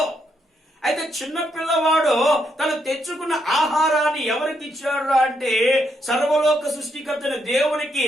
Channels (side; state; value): both; normal; correlation 0.77